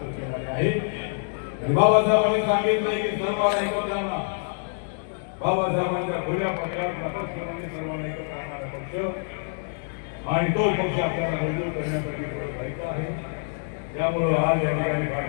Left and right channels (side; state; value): right; silent; digital silence